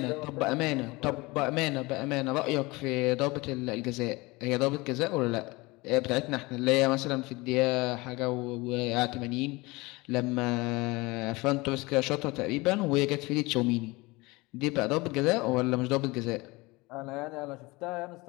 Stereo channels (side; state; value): right; quieter; 23.2 dB